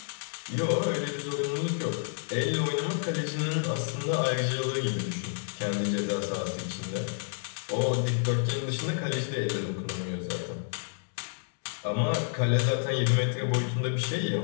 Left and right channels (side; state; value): right; silent; digital silence